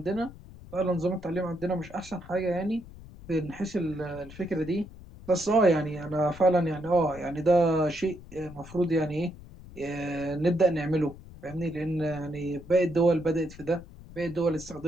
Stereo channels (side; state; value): left; noise; rumble, 17 dB below the sound